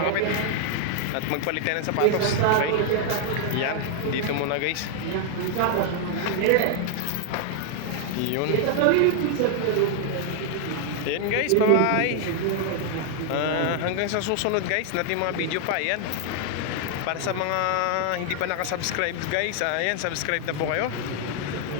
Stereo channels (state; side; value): different; both; correlation 0.00